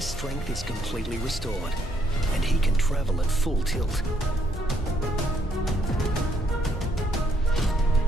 strength is completely restored, and he can travel at full tilt.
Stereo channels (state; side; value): normal; both; correlation 0.71